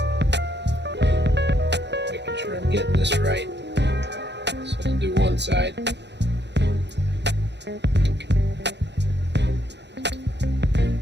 Making sure I'm getting this right. So I'll do one side.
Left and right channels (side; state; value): left; late; 0.50 ms